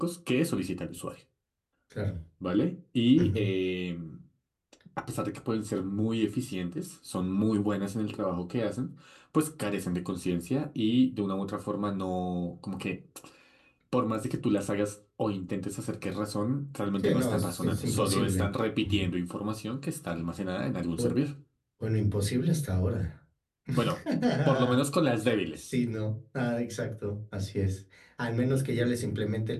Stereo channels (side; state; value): both; identical; correlation 1.00